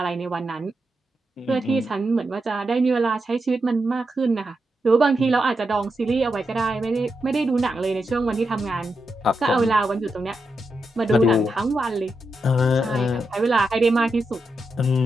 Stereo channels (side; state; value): both; normal; correlation 0.86